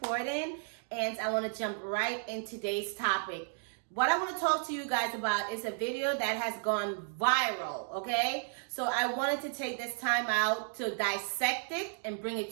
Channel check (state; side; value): silent; left; digital silence